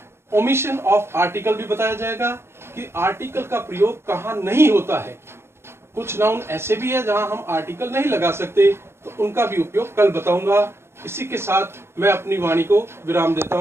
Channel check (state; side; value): late; left; 0.12 ms